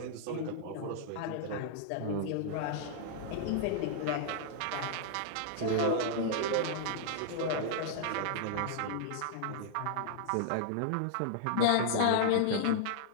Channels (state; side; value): different; both; correlation -0.01